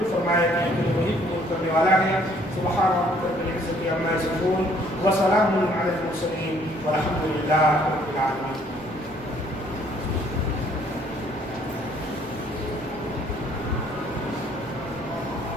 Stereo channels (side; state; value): right; noise; rumble, 21 dB below the sound